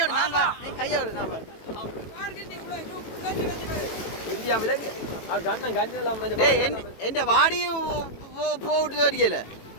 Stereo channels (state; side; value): late; right; 18 ms